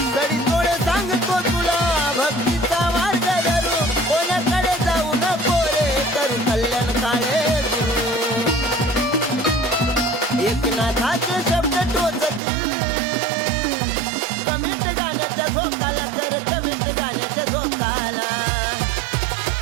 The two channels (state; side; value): drops out; left; at 12.4 s